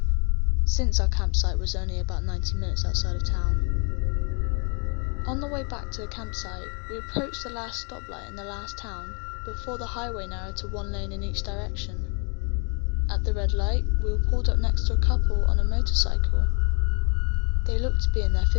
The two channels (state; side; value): quieter; right; 35.4 dB